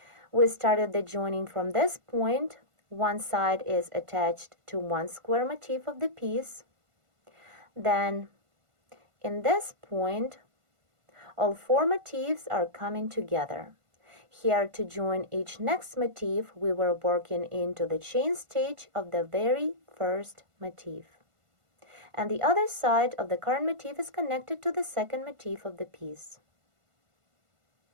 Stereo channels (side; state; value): left; late; 1.5 ms